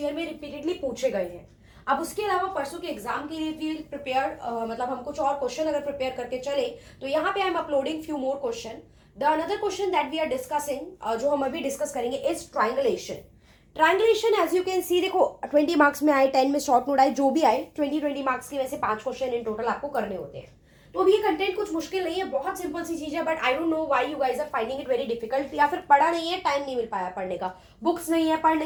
में रिपीटेडली पूछे गए हैं। अब उसके अलावा परसों के एग्जाम के लिए भी प्रिपेयर मतलब हम कुछ और क्वेश्चन अगर प्रिपेयर करके चले तो यहाँ पे I am uploading few more question. The another question that we are discussing जो हम अभी डिस्कस करेंगे is triangulation. Triangulation as you can see, देखो 20 मार्क्स में आए, 10 में शॉर्ट नोट आए, जो भी आए 20 मार्क्स के वैसे 5 क्वेश्चन इन टोटल आपको करने होते हैं। तो अभी ये कंटेंट कुछ मुश्किल नहीं है, बहुत सिंपल सी चीज है, but I don't know why you guys are finding it very difficult. या फिर पढ़ा नहीं है, टाइम नहीं मिल पाया पढ़ने का, बुक्स नहीं है, पढ़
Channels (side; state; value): both; identical; correlation 1.00